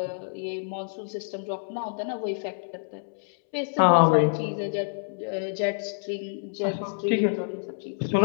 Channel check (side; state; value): right; silent; 60 dB below the other